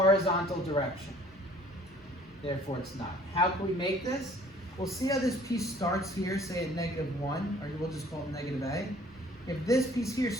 direction. Therefore, it's not. How can we make this? We'll see how this piece starts here, say at -1, or we'll just call it negative A. If this piece here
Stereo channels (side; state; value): both; normal; correlation 0.55